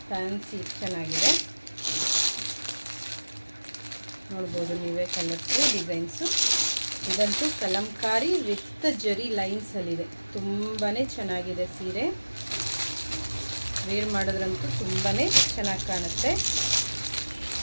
ಫ್ಯಾನ್ಸಿ ಚೆನ್ನಾಗಿದೆ. ನೋಡ್ಬೋದು ನೀವೇ ಕಲರ್ಸು ಡಿಸೈನ್ಸು. ಇದಂತೂ ಕಲಂಕಾರಿ ವಿತ್ ಜರಿ ಲೈನ್ಸಲ್ಲಿದೆ. ತುಂಬಾ ಚೆನ್ನಾಗಿದೆ ಸೀರೆ. ವೇರ್ ಮಾಡೋದ್ರಂತೂ ತುಂಬಾ ಚೆನ್ನಾಗಿ ಕಾಣುತ್ತೆ.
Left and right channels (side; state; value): both; inverted; correlation -1.00